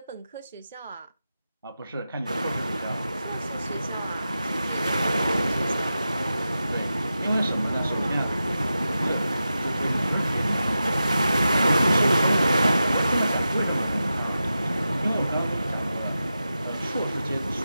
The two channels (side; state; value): both; inverted; correlation -0.91